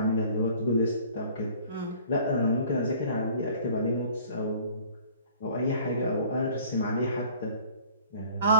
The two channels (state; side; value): inverted; both; correlation -0.51